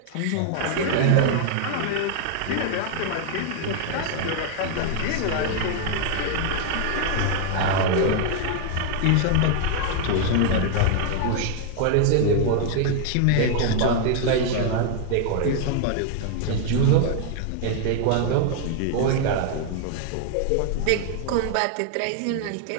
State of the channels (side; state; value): both; different; correlation 0.00